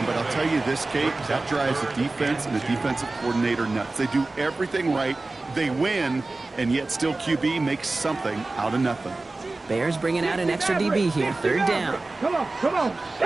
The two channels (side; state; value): left; quieter; 3.2 dB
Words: but I'll tell you this, Kate, that drives the defense and the defensive coordinator nuts. They do everything right. They win, and yet still QB makes something out of nothing. Bears bringing out an extra DB here. Third down. Come on.